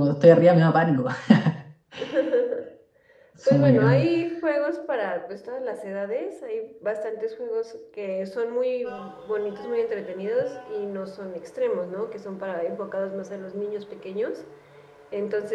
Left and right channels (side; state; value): both; identical; correlation 1.00